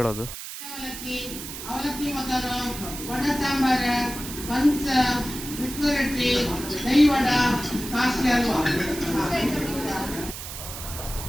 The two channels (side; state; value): right; noise; hiss, 9 dB below the sound